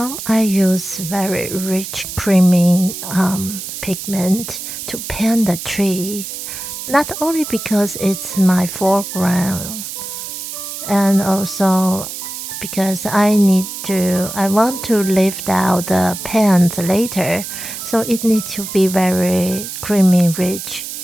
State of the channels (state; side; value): noise; right; hiss, 8 dB below the sound